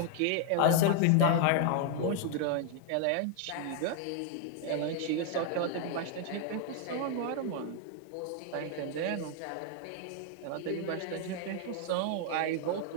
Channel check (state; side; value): different; both; correlation 0.00